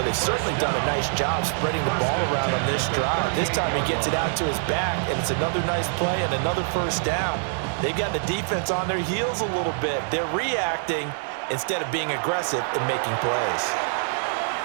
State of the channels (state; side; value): silent; left; digital silence